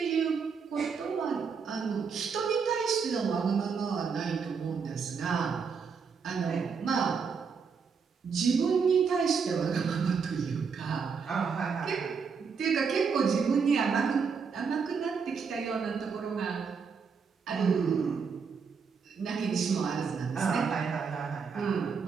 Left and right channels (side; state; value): left; quieter; 5.8 dB